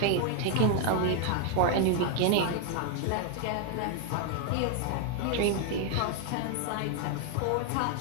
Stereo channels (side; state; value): both; different; correlation 0.00